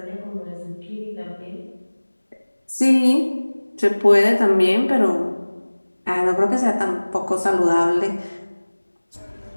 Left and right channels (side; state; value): both; inverted; correlation -1.00